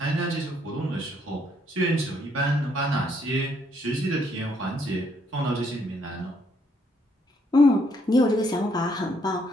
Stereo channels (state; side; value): normal; both; correlation 0.70